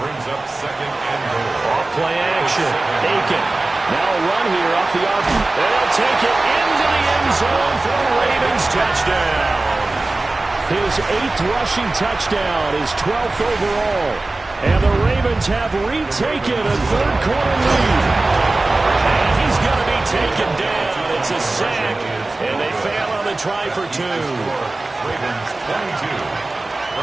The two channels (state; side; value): quieter; left; 3.1 dB